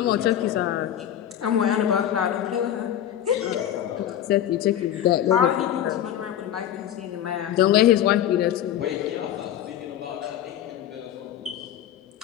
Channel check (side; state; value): right; quieter; 11.0 dB